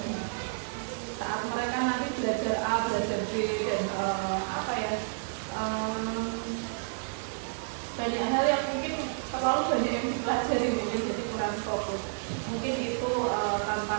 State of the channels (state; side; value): silent; left; 58 dB below the other